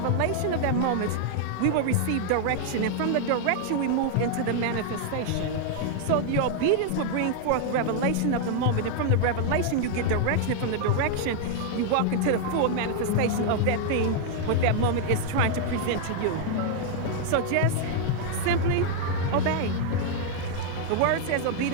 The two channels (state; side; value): different; both; correlation 0.00